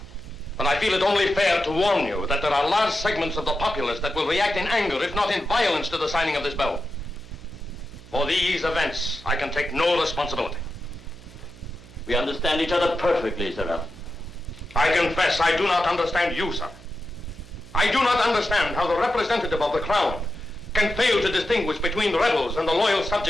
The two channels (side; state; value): right; noise; hum, 20 dB below the sound